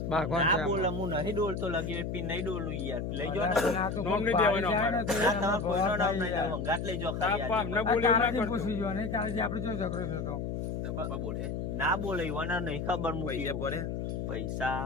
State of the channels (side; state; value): left; noise; hum, 3 dB below the sound